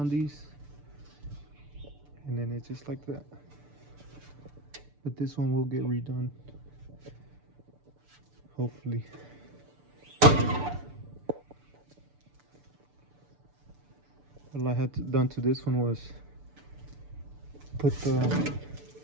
these. And then it's just like that. But this one will get redone, hopefully. All I had done to this one was put the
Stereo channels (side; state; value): left; late; 6.8 ms